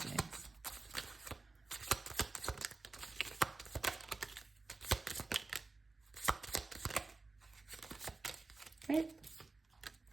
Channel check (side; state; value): left; quieter; 3.6 dB